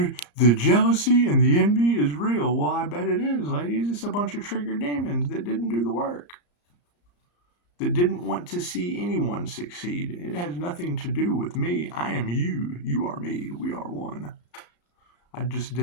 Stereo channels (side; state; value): right; late; 34 ms